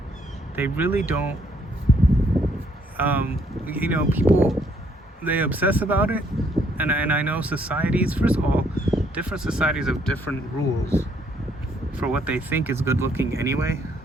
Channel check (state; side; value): normal; both; correlation 0.68